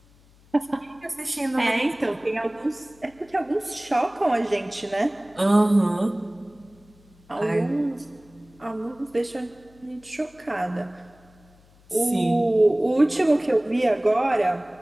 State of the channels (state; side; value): noise; left; hum, 29 dB below the sound